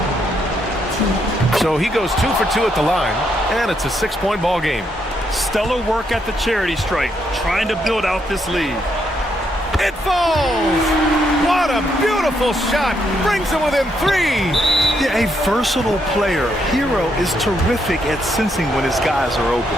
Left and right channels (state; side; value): normal; both; correlation 0.76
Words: So he goes 2 for 2 at the line, and it's a 6-point ball game. Stellar work at the charity stripe, trying to build out this lead. It falls! What a beautiful shot! Brings him within 3! Yeah, a versatile player. Hero is terrific at sensing when his guys are open.